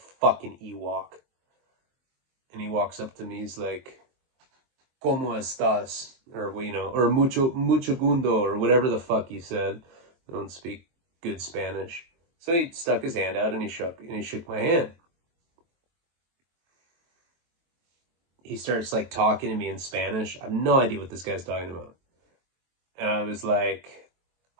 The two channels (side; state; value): left; late; 23 ms